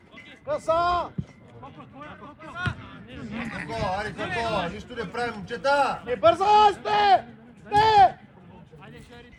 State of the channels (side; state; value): both; identical; correlation 1.00